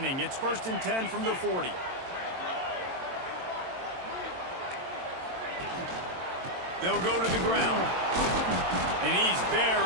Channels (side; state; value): left; late; 22 ms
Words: It's 1st and 10 from the 40. They'll go to the ground. And he's